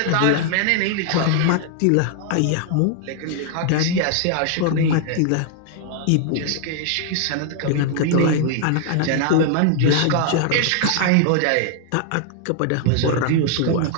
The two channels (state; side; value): different; both; correlation 0.00